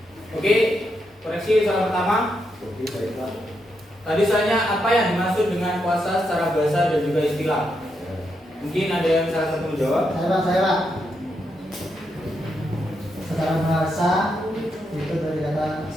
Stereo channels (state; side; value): normal; both; correlation 0.82